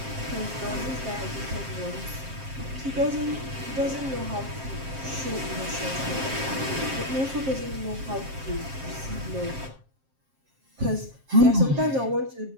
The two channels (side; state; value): left; late; 7.5 ms